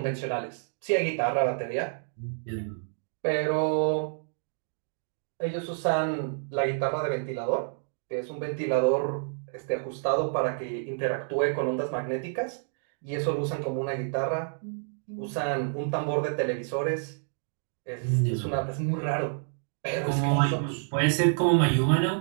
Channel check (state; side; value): silent; left; digital silence